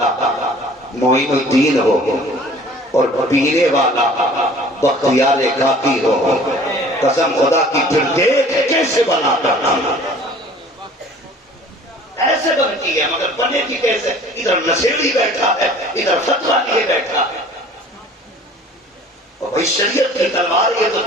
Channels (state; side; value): normal; both; correlation 0.49